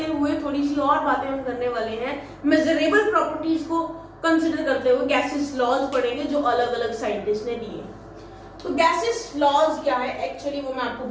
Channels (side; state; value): both; identical; correlation 1.00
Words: हुए थोड़ी सी और बातें हम करने वाले हैं। मेजरेबल प्रॉपर्टीज को कंसिडर करते हुए गैसेस लॉज पढ़ेंगे जो अलग अलग साइंटिस्ट ने दिए। तो गैसेस लॉज क्या है एक्चुअली वो मैं आपको